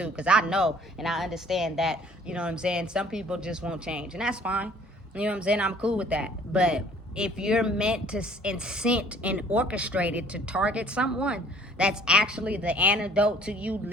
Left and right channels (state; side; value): normal; both; correlation 0.55